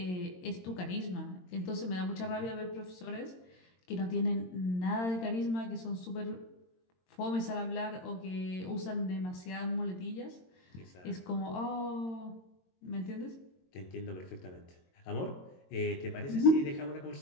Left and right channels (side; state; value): right; late; 22 ms